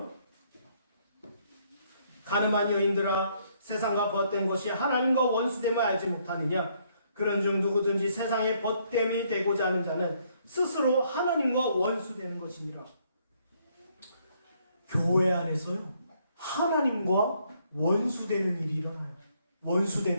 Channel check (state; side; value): inverted; both; correlation -0.69